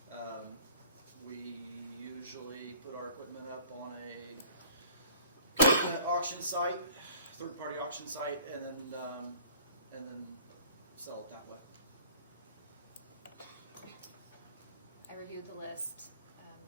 We usually put our equipment up on a auction site, third-party auction site, and then sell it that way. reviewed the list.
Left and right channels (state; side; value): inverted; both; correlation -0.51